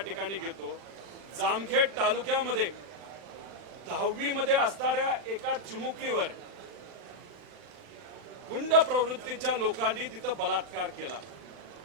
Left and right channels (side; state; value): left; late; 40 ms